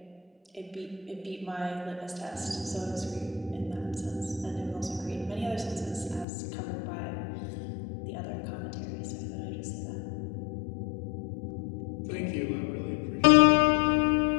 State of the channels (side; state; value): right; drops out; at 6.2 s